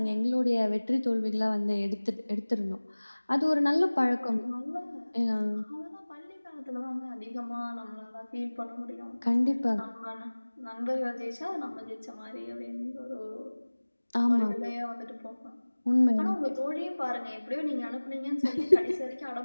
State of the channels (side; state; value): both; inverted; correlation -1.00